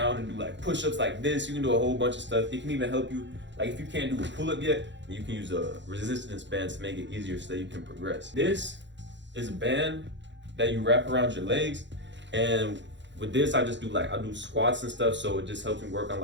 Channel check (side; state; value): left; late; 0.53 ms